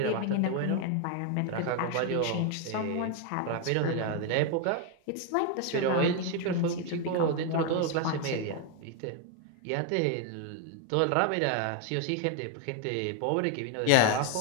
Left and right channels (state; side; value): different; both; correlation 0.01